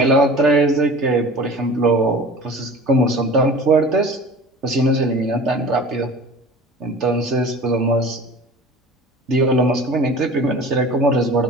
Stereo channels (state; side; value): normal; both; correlation 0.40